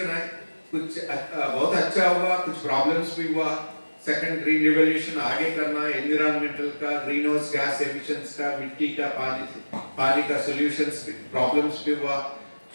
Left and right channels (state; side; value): inverted; both; correlation -1.00